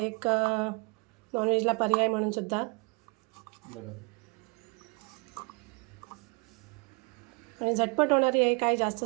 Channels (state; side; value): quieter; left; 31.2 dB